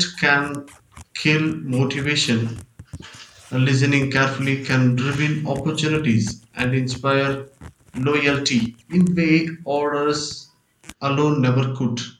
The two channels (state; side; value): identical; both; correlation 1.00